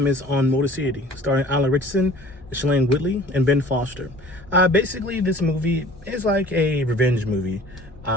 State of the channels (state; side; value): normal; both; correlation 0.48